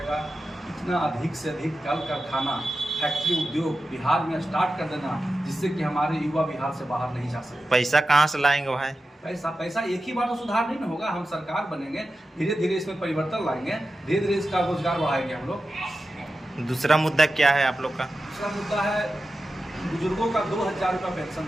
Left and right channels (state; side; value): normal; both; correlation 0.92